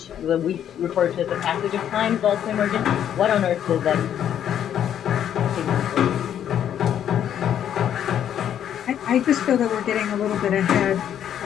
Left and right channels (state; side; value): quieter; right; 9.9 dB